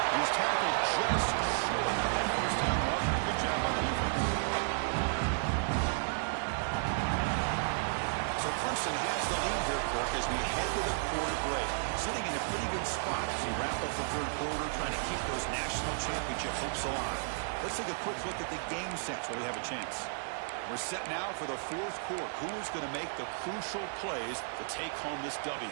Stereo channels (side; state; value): left; silent; digital silence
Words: He's tackled just short of that first down marker. Good job by the defense. So Clemson has the lead here, Kirk, as we head to the quarter break. Sitting in a pretty good spot as we wrap up the third quarter, trying to keep those national championship hopes alive. Let's take a quick look at the game sets while we have a chance. We're set now for the fourth quarter. Who is going to make the crucial plays to take home this W?